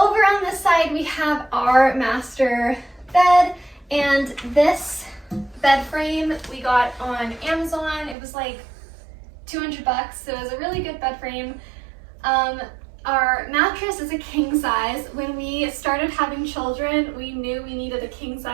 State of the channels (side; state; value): left; drops out; at 8.2 s